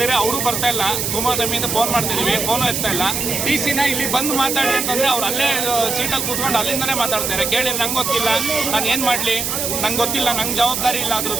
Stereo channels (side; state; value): right; noise; hiss, 1 dB below the sound